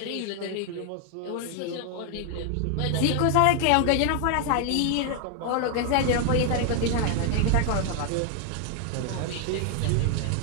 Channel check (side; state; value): both; different; correlation 0.00